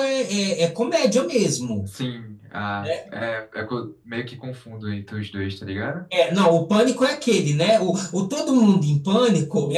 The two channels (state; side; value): identical; both; correlation 1.00